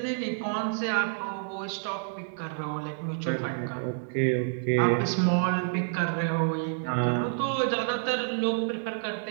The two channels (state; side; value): silent; left; digital silence